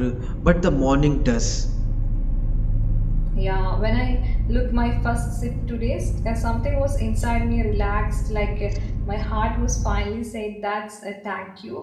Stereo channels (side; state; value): both; identical; correlation 1.00